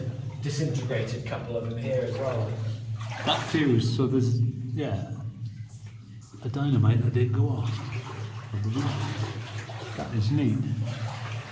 disintegrated couple of them here as well. That fuse, so there's, yeah, a dynamite that did go off. That is neat.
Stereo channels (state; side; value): identical; both; correlation 1.00